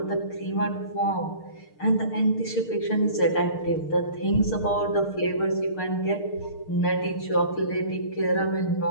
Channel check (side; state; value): right; late; 6.6 ms